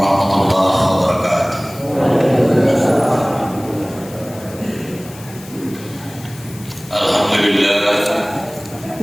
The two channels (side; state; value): left; noise; hiss, 19 dB below the sound